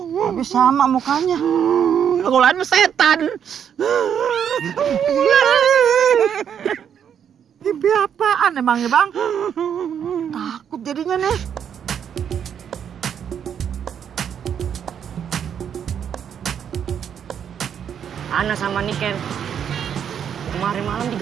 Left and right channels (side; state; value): left; quieter; 8.4 dB